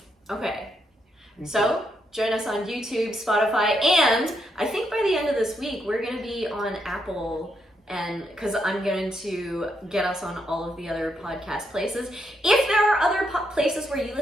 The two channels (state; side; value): normal; both; correlation 0.79